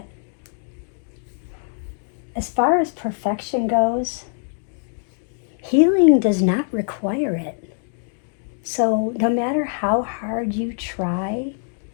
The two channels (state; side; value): silent; right; digital silence